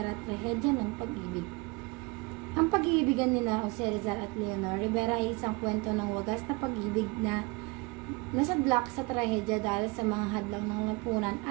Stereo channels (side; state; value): left; quieter; 26.3 dB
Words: Trahedya ng Pag-ibig. Ang pag-iibigan nila Jose Rizal at Leonor Rivera ay isang kwento ng wagas na pag-ibig na nasadlak sa trahedya dahil sa mga hadlang ng lipunan